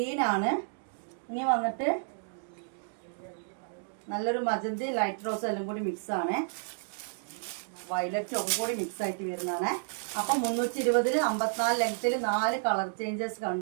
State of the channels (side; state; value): left; silent; digital silence